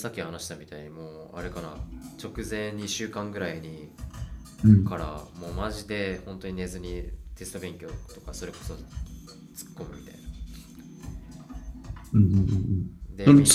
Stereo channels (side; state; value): both; identical; correlation 1.00